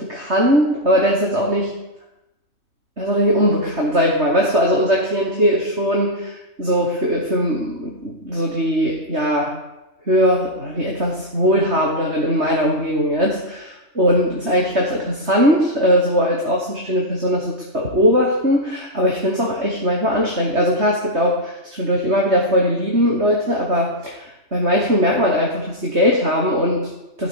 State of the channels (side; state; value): left; late; 3.2 ms